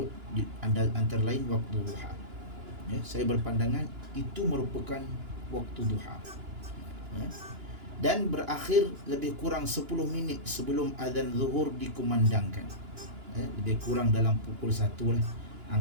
antara lain waktu duha. Saya berpandangan itu merupakan waktu duha, dan berakhir lebih kurang 10 minit sebelum azan zuhur dikumandangkan. Lebih kurang dalam pukul 1 lah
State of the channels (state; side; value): late; left; 2.9 ms